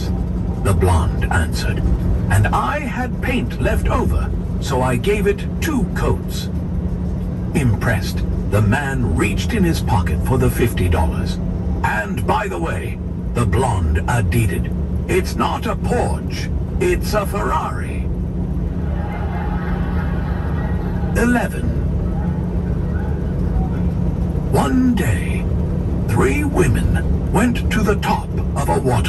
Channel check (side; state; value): both; identical; correlation 1.00